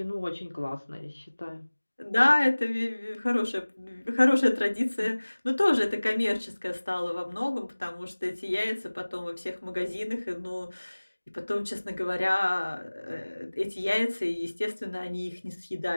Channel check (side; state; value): both; inverted; correlation -1.00